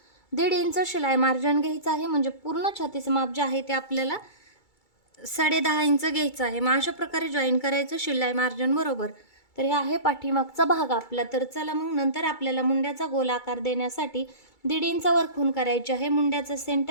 1.5 इंच शिलाई मार्जिन घ्यायचं आहे, म्हणजे पूर्ण छातीचं माप जे आहे ते आपल्याला 10.5 इंच घ्यायचं आहे. मग अशा प्रकारे जॉईन करायचं शिलाई मार्जिन बरोबर. तर हे आहे पाठीमागचा भाग आपला. तर चला मग नंतर आपल्याला मुंड्याचा गोल आकार देण्यासाठी 1.5 इंच वर खूण करायची आहे. मुंड्याचा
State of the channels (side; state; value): right; late; 2.3 ms